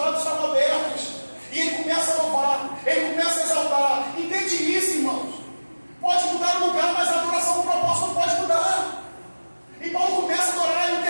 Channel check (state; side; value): inverted; both; correlation -1.00